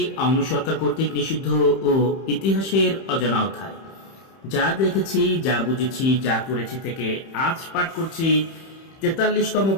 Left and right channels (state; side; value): late; right; 31 ms